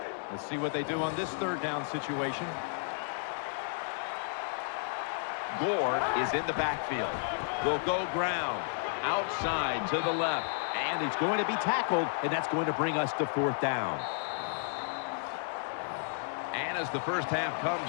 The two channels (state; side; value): silent; right; digital silence